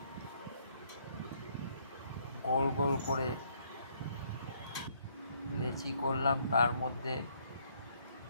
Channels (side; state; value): both; inverted; correlation -0.68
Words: গোল গোল করে লেচি করলাম, তার মধ্যে